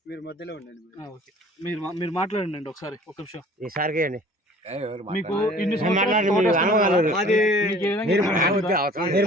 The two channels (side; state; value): both; normal; correlation 0.49